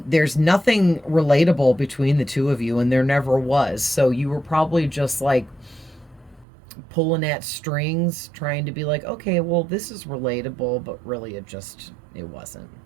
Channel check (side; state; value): left; drops out; at 6.5 s